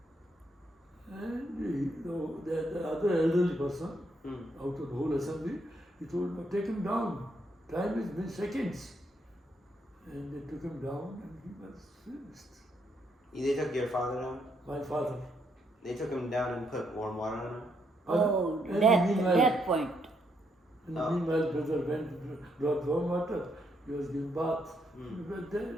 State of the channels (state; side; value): normal; both; correlation 0.75